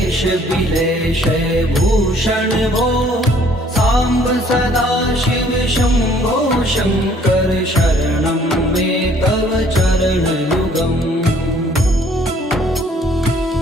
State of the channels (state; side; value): normal; both; correlation 0.59